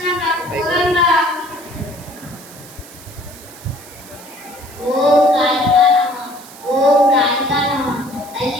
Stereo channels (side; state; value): right; noise; hiss, 19 dB below the sound